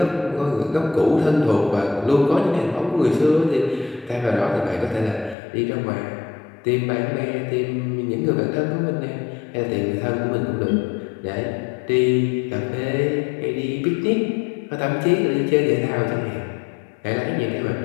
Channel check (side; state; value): right; drops out; at 5.4 s